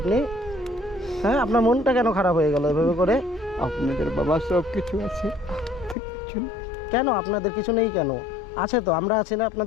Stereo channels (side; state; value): right; drops out; at 6.0 s